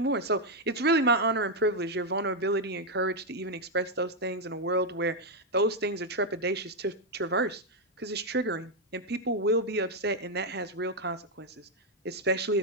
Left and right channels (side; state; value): both; normal; correlation 0.01